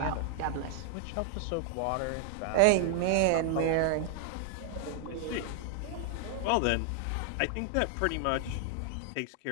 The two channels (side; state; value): both; different; correlation 0.00